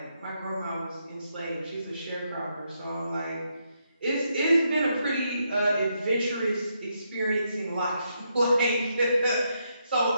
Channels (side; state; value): both; inverted; correlation -0.79